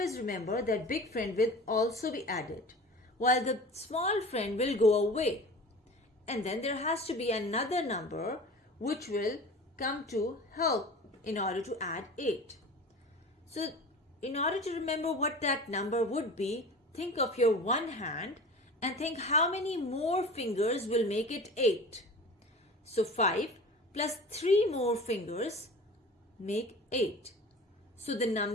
remember that big friend will also be added, while the small friend will go away. And then there has to be another number which will come to help in order to add 8. So, in order to remember what that number would be, think of your one hand and think how many more fingers will make it 8. So 5 plus 3 more fingers make 8. So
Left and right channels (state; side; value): normal; both; correlation 0.37